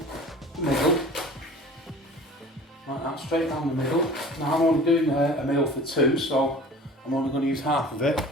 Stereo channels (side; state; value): both; normal; correlation 0.42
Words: middle, like that, straight down the middle. Now I'm only doing a meal for two, so I'm only going to use half of it,